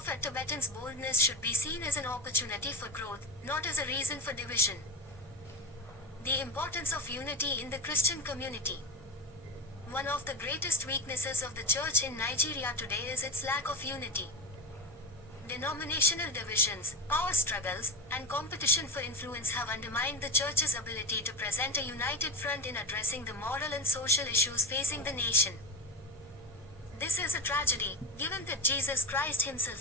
Tibetan's boldness should be seen as an opportunity for growth, not as a reason for division. The importance of unity in the Christian community. One of the greatest weaknesses of the church in Nigeria today is its lack of unity. Denominational divisions, power struggles, and competition for influence have undermined the church's ability to present a united front in addressing the moral and social issues facing the nation. This is a tragedy, given that Jesus Christ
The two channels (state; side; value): normal; both; correlation 0.21